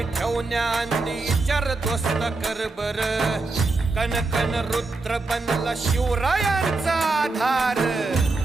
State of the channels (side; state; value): left; quieter; 3.5 dB